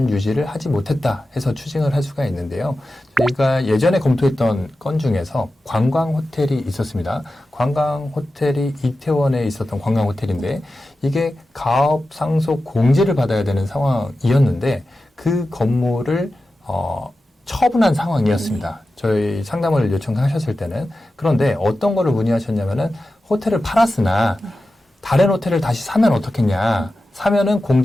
유지를 하지 못했다 해서 추징을 할 수가 있는데요. 저희가 예전에 검토했던 건 중에서 관광호텔이 있었습니다. 관광호텔이 이태원에 있었던 관광호텔인데 이게 가업 상속 공제를 받아야 되는 상황이었는데 그 건물을 처분한 상황이었습니다. 저희 상담을 요청하셨을 때는. 그런데 어떤 거를 문의하셨냐면은 호텔을 팔았으나 다른 호텔을 다시 사면 어떻겠냐. 사면은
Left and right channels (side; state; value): both; normal; correlation 0.93